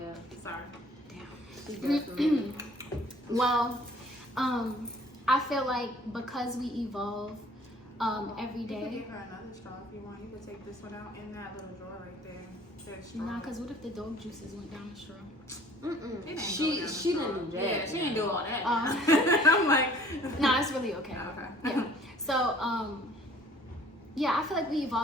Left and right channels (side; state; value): both; normal; correlation 0.53